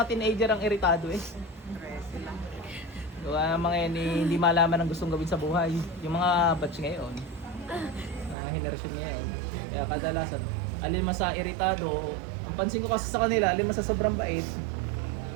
teenager ang iritado eh. 13 lang. Gawa ng mga yan hindi malaman ang gustong gawin sa buhay. Yung mga batch ngayon, mga henerasyon ngayon. Kaya kadalasan, alin man sa iritado, ang pansin ko kasi sa kanila, alin man sa sobrang bait,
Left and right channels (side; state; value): left; drops out; at 8.3 s